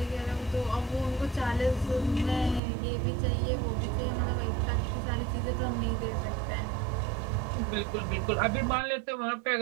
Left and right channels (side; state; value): left; drops out; at 2.6 s